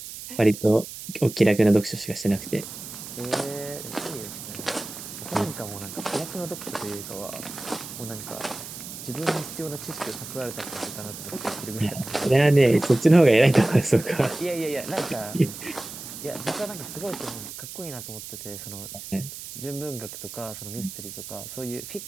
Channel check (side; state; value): right; noise; hiss, 11 dB below the sound